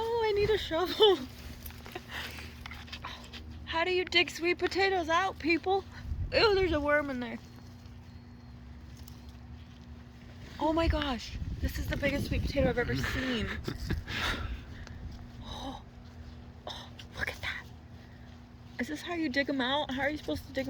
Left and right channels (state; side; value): identical; both; correlation 1.00